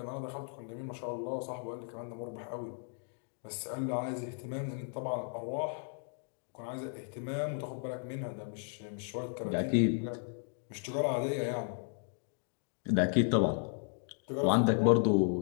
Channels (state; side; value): silent; right; 54 dB below the other